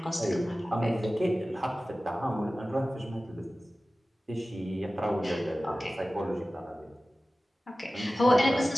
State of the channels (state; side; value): normal; both; correlation 0.96